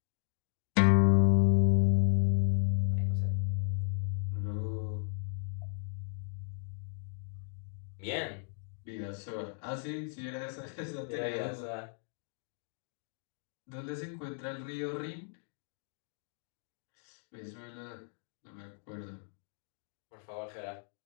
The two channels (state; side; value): silent; right; 54 dB below the other